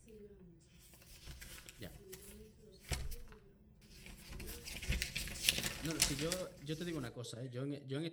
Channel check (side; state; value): both; identical; correlation 1.00